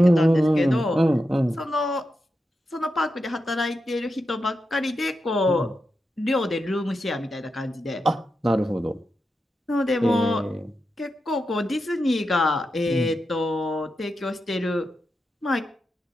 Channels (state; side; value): normal; both; correlation 0.88